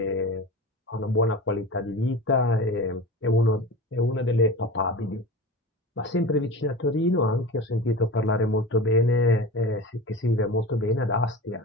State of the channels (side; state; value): both; normal; correlation 0.32